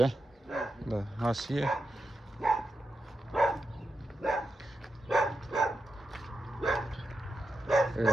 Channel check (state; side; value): normal; both; correlation 0.88